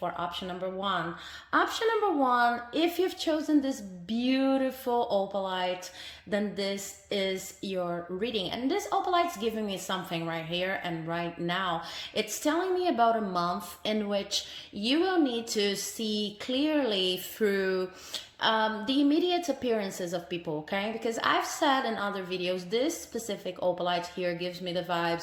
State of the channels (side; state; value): both; identical; correlation 1.00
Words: option number 1. Option number 1, if you've chosen this beautiful opalite, then this is your reading. And this opalite's giving me something right here and right now. It's telling me about a month in which you will need to see clearly through the immediate appearances of people, okay? Because I've said in other videos, this specific opalite here gives me the